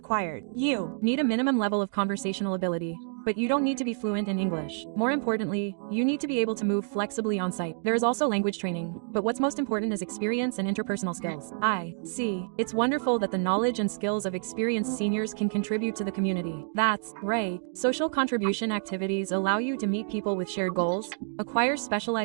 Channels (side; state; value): left; silent; 59 dB below the other